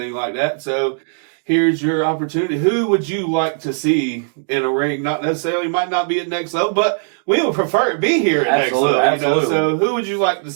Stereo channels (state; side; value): silent; left; digital silence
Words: like that. So here's your opportunity. Who would you like to see in a ring? Not necessarily, might not be at next level, but we would prefer it be here at next level. Absolutely. So who would you like to